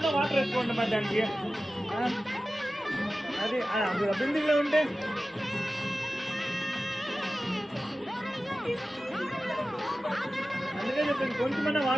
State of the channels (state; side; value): normal; both; correlation 0.95